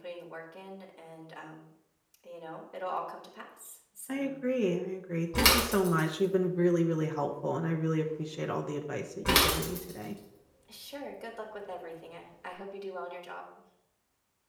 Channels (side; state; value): both; identical; correlation 1.00